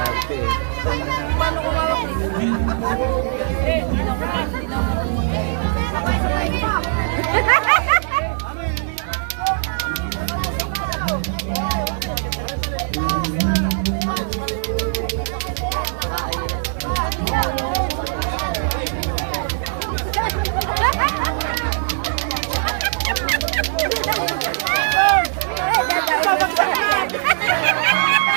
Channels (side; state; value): left; silent; digital silence